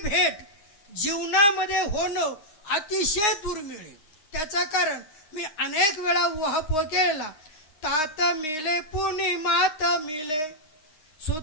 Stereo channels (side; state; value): right; late; 9.7 ms